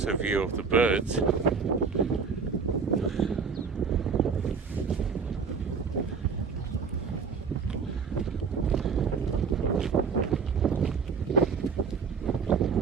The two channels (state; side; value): quieter; left; 5.5 dB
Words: view of the birds.